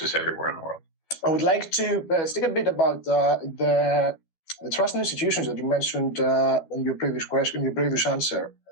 everywhere in the world. I would like to speak a bit about the trust in institutions that you mentioned in your previous question, your previous answer.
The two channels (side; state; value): right; late; 12 ms